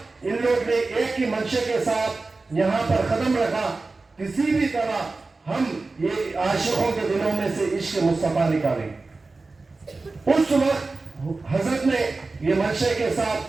ان لوگ نے ایک ہی منشے کے ساتھ یہاں پر قدم رکھا کسی بھی طرح ہم یہ عاشقوں کے دلوں میں سے عشق مصطفیٰ نکالیں. اس وقت حضرت نے یہ منشے کے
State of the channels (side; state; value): left; quieter; 3.6 dB